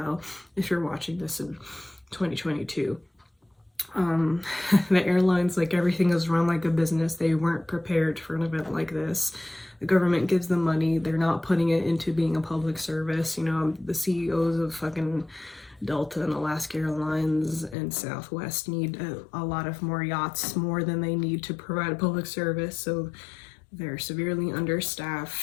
if you're watching this in 2022, the airlines, like, everything is run like a business. They weren't prepared for an event like this. The government gives them money. They're not putting it into being a public service. You know, the CEOs of fucking Delta and Alaska Airlines and Southwest need a lot of more yachts, more than they need to provide a public service. So they're severely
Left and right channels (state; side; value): drops out; right; at 17.8 s